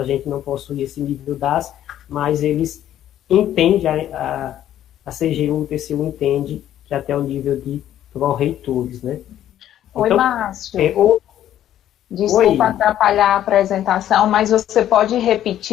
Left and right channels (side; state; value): right; quieter; 11.6 dB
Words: gente não possui esse nível DAS, mas eles entendem, a CGU, o TCU entende que até o nível de pró-reitores, né. Oi, então, Márcio. Desculpa atrapalhar a apresentação, mas você pode